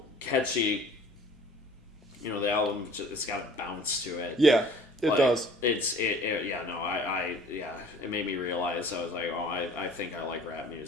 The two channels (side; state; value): both; normal; correlation 0.49